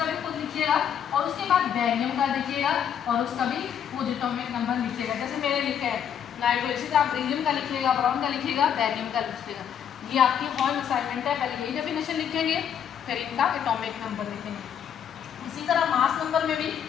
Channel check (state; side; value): quieter; right; 8.7 dB